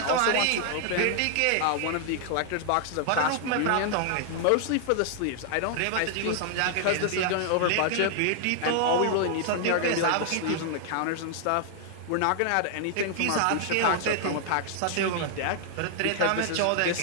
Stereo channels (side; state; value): both; different; correlation 0.00